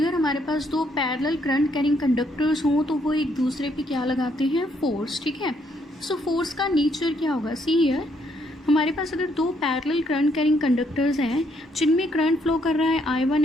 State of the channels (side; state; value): both; normal; correlation 0.71